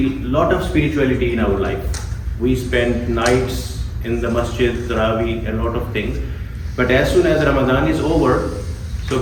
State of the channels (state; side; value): identical; both; correlation 1.00